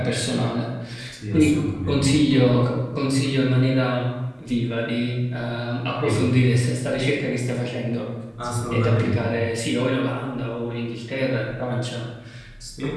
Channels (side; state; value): both; identical; correlation 1.00